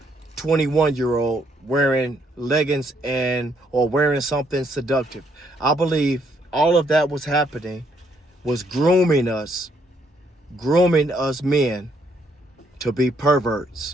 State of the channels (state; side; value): normal; both; correlation 0.71